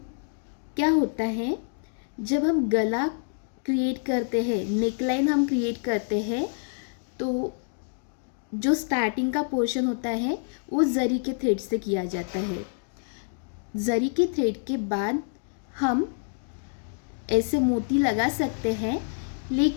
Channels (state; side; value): silent; right; digital silence